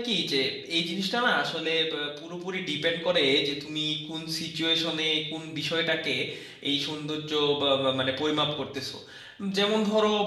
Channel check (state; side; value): identical; both; correlation 1.00